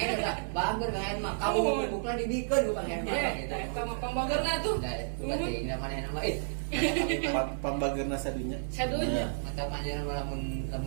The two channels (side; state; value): left; silent; 57 dB below the other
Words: udah bangger kan mah. Kamu bubukna dibikeun bukan yang mana gitu. Eta mah pambageurna tuh. Berarti ini mana nama Pambageurna sadinya. Sadunya. atau aja lamun